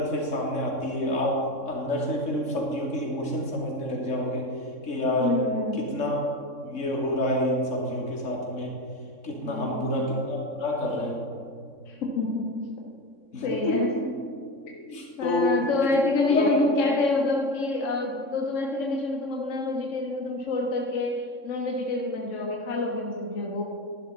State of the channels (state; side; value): late; right; 3.6 ms